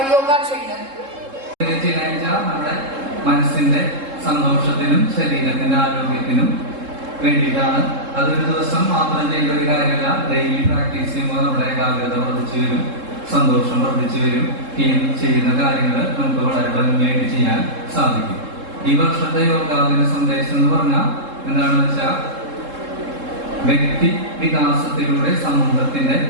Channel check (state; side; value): late; left; 3.7 ms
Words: yoga trainer. നമ്മുടെ മനസ്സിന്റെ സന്തോഷത്തിനും ശരീരത്തിന്റെ ആരോഗ്യത്തിനും വേണ്ടിയിട്ടാണ്. അതൊരു ദിവസം മാത്രം ചെയ്യേണ്ട ഒരു കാര്യമല്ല. ഡെയിലി പ്രാക്ടീസ് ചെയ്യുമ്പോൾ നമ്മുടെ ഏകാഗ്രത വർദ്ധിച്ചു വരും, സന്തോഷം വർദ്ധിച്ചു വരും. ചെയ്യുന്ന കാര്യങ്ങൾ നമുക്ക് വളരെ ഭംഗിയായിട്ട് ചെയ്യാൻ സാധിക്കും. ഈ വർഷത്തെ യോഗാദിന സന്ദേശം എന്ന് പറഞ്ഞാൽ എന്താണെന്ന് വെച്ചാൽ വ്യക്തി വികാസത്തിലൂടെ സമൂഹത്തിന്റെ